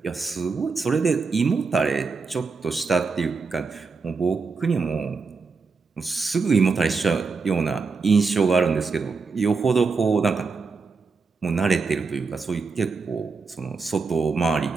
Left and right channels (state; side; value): quieter; left; 4.7 dB